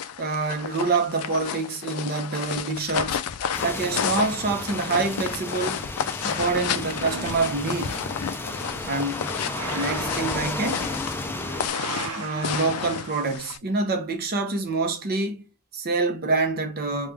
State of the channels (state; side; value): normal; both; correlation -0.05